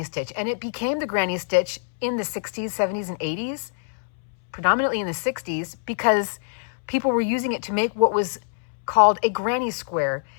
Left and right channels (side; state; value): right; silent; 62 dB below the other